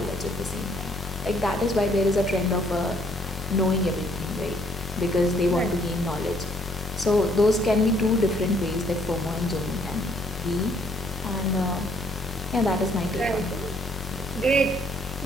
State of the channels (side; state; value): both; normal; correlation 0.65